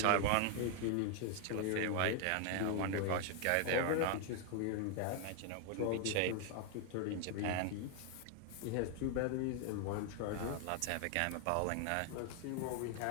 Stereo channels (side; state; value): both; different; correlation 0.00